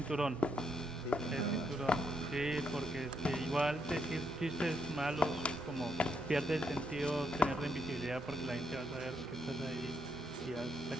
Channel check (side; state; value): both; normal; correlation 0.77